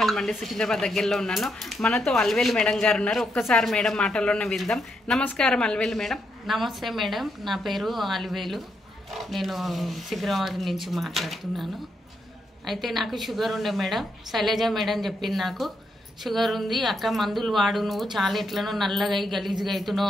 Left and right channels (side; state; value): both; normal; correlation 0.79